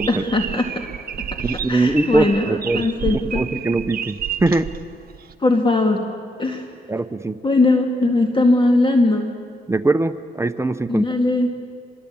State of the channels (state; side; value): normal; both; correlation 0.79